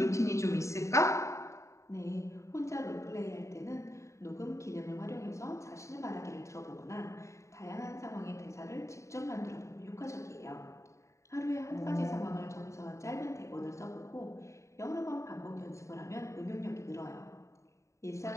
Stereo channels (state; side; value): late; right; 0.14 ms